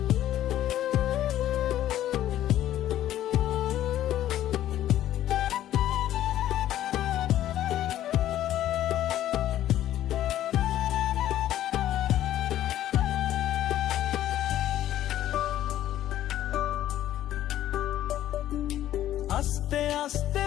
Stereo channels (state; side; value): quieter; right; 12.7 dB